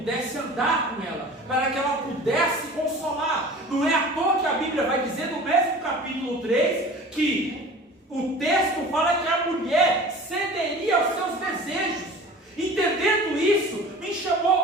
andar com ela, para que ela pudesse consolar. Não é à toa que a Bíblia vai dizer no mesmo capítulo 3 que o texto fala que a mulher cederia aos seus desejos. Entendendo isso, me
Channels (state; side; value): normal; both; correlation 0.41